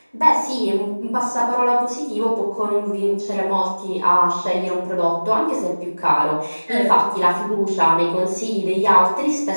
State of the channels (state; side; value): inverted; both; correlation -1.00